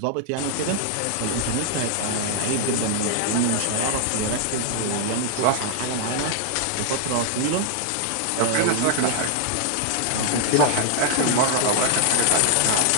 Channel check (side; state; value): both; different; correlation 0.00